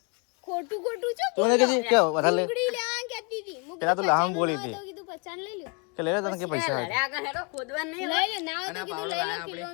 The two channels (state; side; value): quieter; right; 32.4 dB